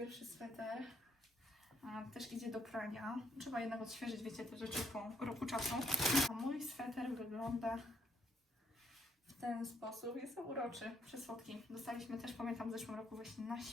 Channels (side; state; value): both; normal; correlation 0.71